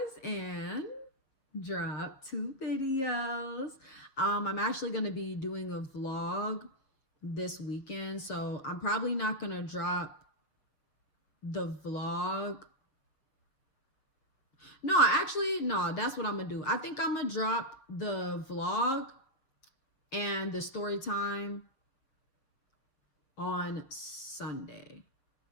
and drop 2 videos. I'm actually gonna be doing a vlog this weekend, so I'm probably not gonna drop the vlog. No, actually, no, that's what I'm gonna do. I think I'm gonna drop the vlog and the story time on Sunday.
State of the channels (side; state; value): right; late; 7.2 ms